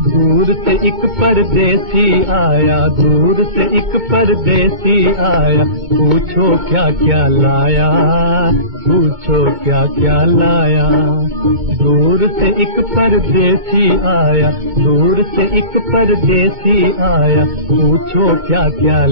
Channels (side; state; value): left; late; 2.2 ms